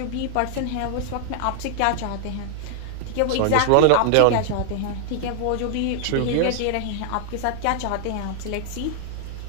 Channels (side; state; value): both; different; correlation 0.00